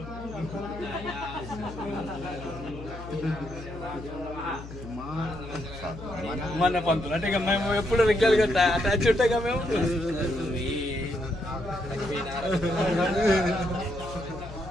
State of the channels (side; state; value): left; noise; hum, 12 dB below the sound